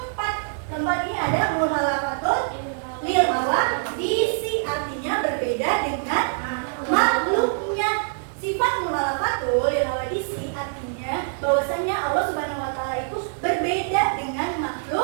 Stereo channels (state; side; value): silent; left; digital silence